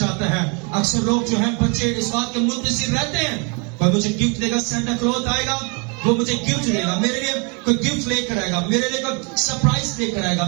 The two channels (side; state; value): left; quieter; 34.0 dB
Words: ہے. اکثر لوگ جو ہیں بچے اس بات کے منتظر رہتے ہیں کوئی مجھے گفٹ دے گا سینٹا کلوز آئے گا وہ مجھے گفٹ دے گا میرے لیے کوئی گفٹ لے کر آئے گا میرے لیے کوئی سرپرائز لے کر آئے